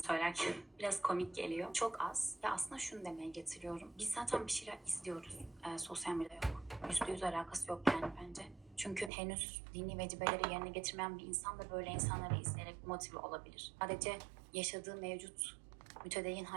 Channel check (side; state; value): left; drops out; at 9.1 s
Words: Söylerken biraz komik geliyor. Çok az. Ya aslında şunu demeye getiriyorum. Biz zaten bir şeyler izliyoruz. Sosyal medyada yok. %100 alakası yok yani bence. Çünkü henüz dini vecibeleri yerine getirmeyen bir insan da böyle insanları izleyerek motive olabilir. Sadece yaşadığı mevcut mütedeyyin